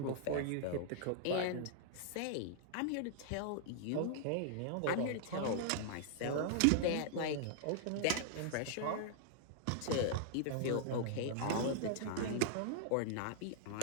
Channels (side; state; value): both; different; correlation -0.01